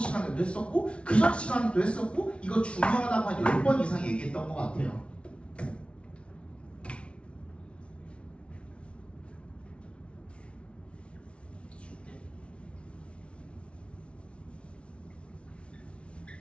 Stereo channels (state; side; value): late; right; 0.060 ms